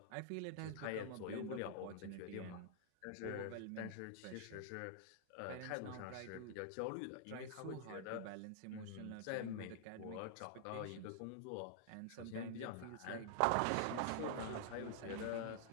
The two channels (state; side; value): different; both; correlation -0.01